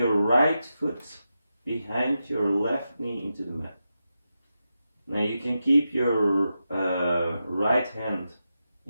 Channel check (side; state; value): both; inverted; correlation -0.89